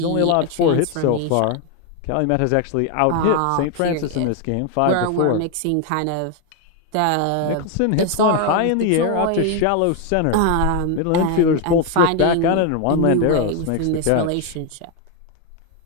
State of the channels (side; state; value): both; different; correlation 0.01